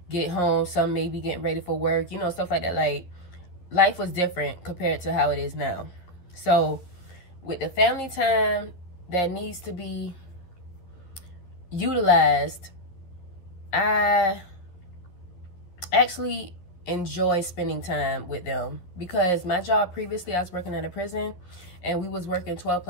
get home, some maybe getting ready for work, you know, stuff like that. Like, life was different compared to how it is now. So with the family time that needs to be utilized, I actually enjoy spending time with them, because my job previously, I was working at a prison and we was working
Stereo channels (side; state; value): right; late; 11 ms